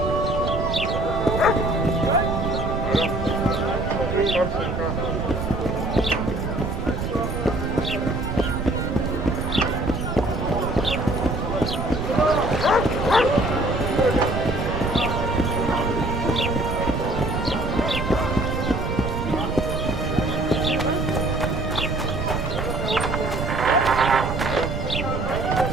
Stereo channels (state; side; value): noise; right; rumble, 3 dB below the sound